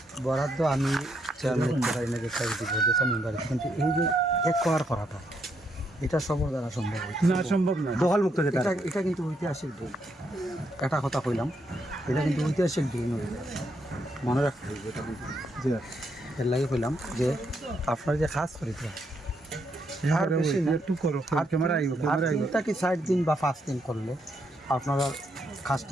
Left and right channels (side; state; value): both; normal; correlation 0.77